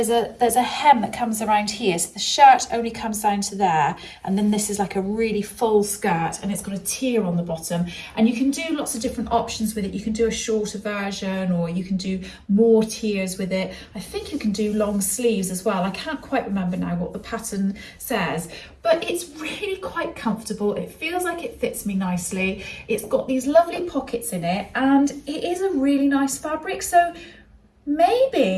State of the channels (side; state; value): both; identical; correlation 1.00